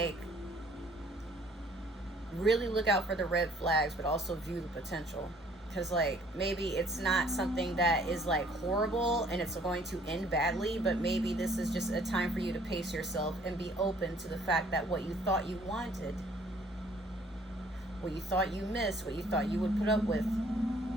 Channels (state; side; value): normal; both; correlation 0.59